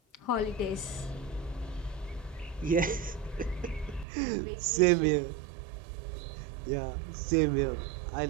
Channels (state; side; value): drops out; left; at 4.0 s